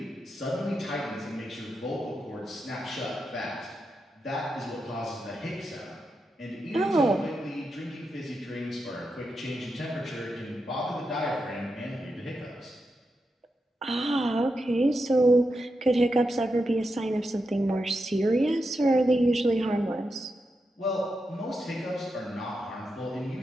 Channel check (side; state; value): both; normal; correlation 0.87